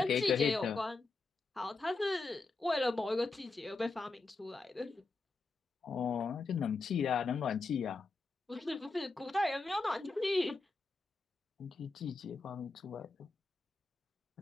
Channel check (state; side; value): quieter; right; 3.7 dB